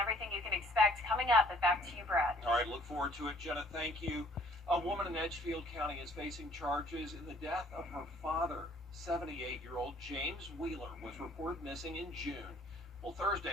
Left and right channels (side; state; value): both; normal; correlation 0.58